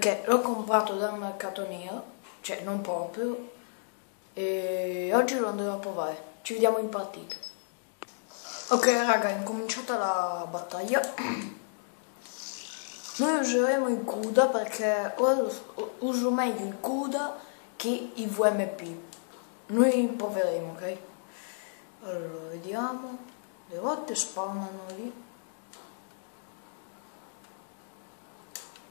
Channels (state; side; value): silent; right; digital silence